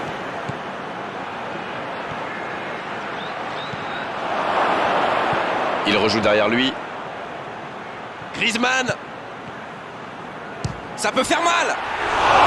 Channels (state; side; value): identical; both; correlation 1.00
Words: Il rejoue derrière lui. Griezmann. Ça peut faire mal.